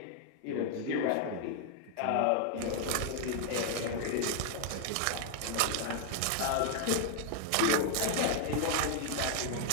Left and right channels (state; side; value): different; both; correlation 0.00